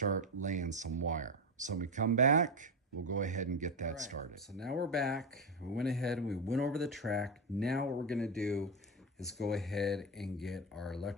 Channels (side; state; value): both; normal; correlation 0.13